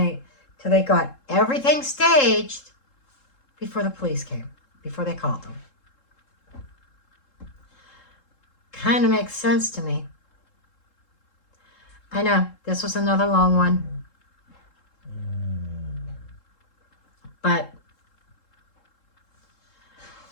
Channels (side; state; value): right; late; 3.7 ms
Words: Till they got everything staged before the police came, before they called them. Kind of makes sense to me. I know, this was another long one. But